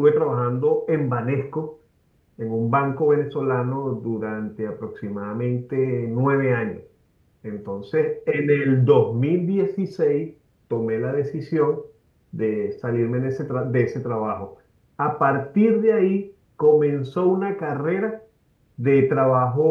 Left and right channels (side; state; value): both; identical; correlation 1.00